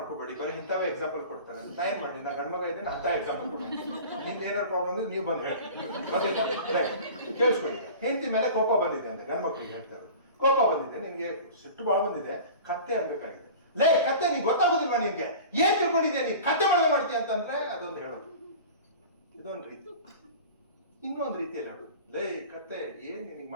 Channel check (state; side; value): inverted; both; correlation -0.38